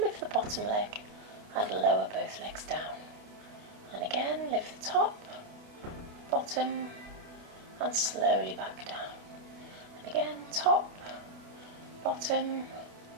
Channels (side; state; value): left; late; 28 ms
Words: the bottom leg, and lower both legs down. And again, lift the top, bottom, and slowly back down. And again, top, bottom,